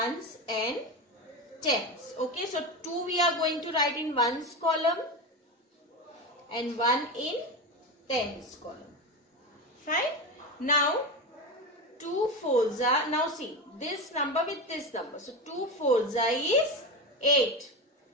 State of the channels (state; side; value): normal; both; correlation 0.20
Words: and tens. Okay, so 2 we are going to write in ones column and 1 in tens column. Fine. Now 2 4s are, now see this number with this number. So 2 4s is 8.